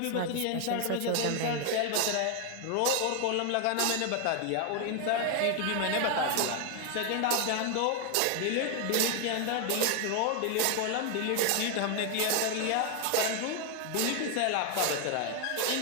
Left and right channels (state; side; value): different; both; correlation 0.01